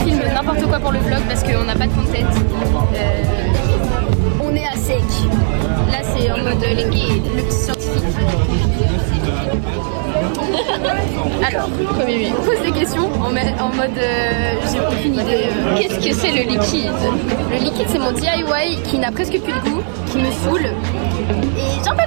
n'importe quoi pour le vlog parce qu'on n'a pas de content. On est à sec. Là c'est en mode les gays, le petit scientifique. Alors, on pose des questions en mode j'ai aucune idée. Qu'est-ce que c'est le liquide? Le liquide c'est mon DIY qui n'a presque plus de goût, qui me saoule. Et j'en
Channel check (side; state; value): left; silent; digital silence